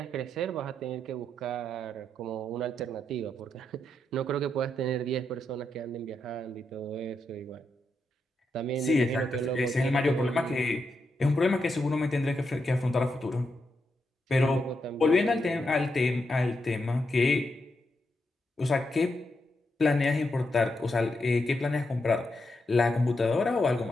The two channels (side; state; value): both; normal; correlation 0.83